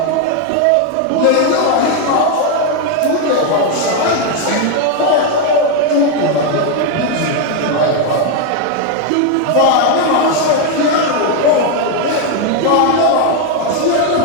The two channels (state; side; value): different; both; correlation 0.01